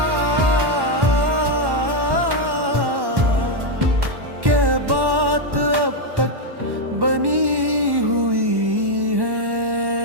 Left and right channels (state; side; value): late; left; 1.1 ms